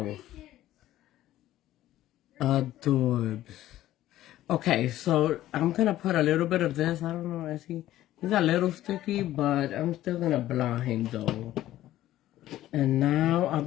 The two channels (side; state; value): right; quieter; 14.1 dB